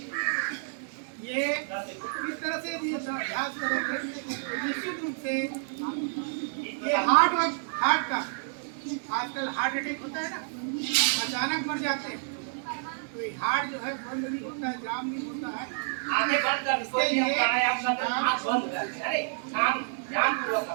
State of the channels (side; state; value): left; silent; 58 dB below the other